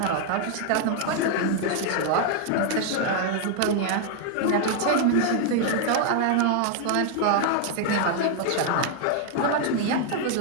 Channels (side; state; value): both; different; correlation 0.00